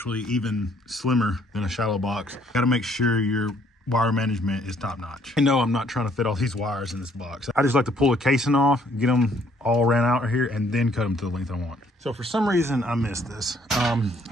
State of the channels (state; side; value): normal; both; correlation 0.65